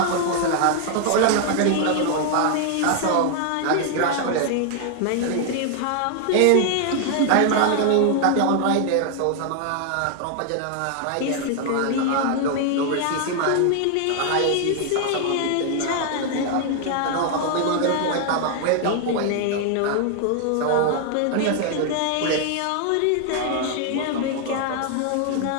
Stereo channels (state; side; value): different; both; correlation 0.00